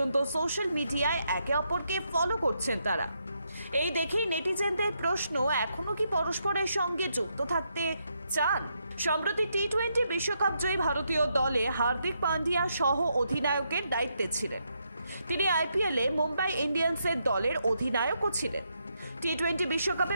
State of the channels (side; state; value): both; inverted; correlation -0.79